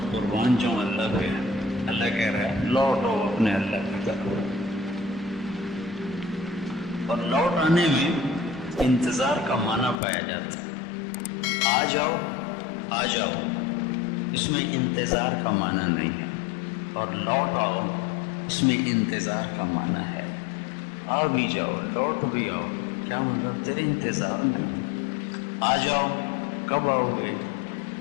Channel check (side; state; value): right; drops out; at 10.0 s